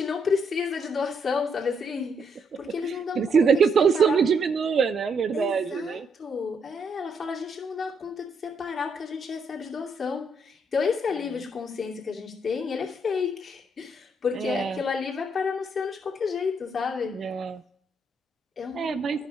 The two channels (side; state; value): both; normal; correlation 0.75